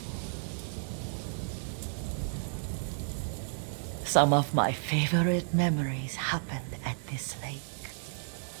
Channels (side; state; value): left; silent; 56 dB below the other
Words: Some of my favorite memories happened at this lake.